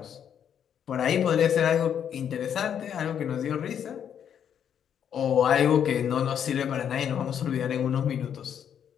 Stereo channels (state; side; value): quieter; right; 8.7 dB